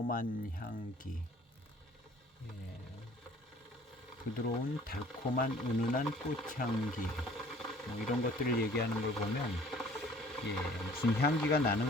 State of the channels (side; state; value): both; normal; correlation 0.52